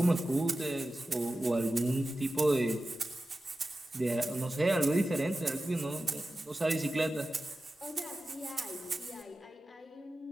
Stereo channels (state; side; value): normal; both; correlation 0.94